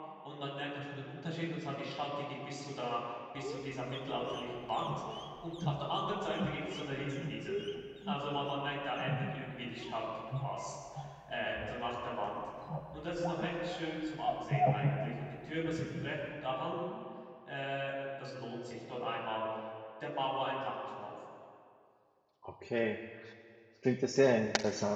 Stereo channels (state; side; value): identical; both; correlation 1.00